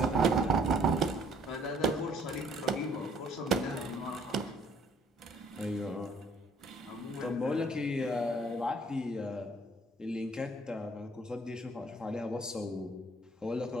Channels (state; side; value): normal; both; correlation 0.61